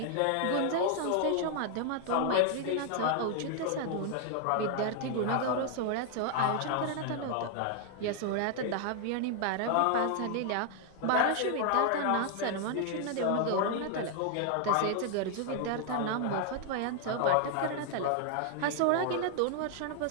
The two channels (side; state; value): both; different; correlation 0.00